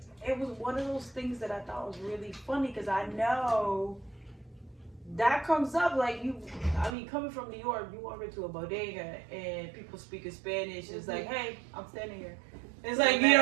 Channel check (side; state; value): left; drops out; at 7.0 s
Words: It was one of those things that I thought was really funny because I know that comes up coming from New York, you walk into a bodega and people speaking Spanish. It's like, hey, I'm standing here. It's like, you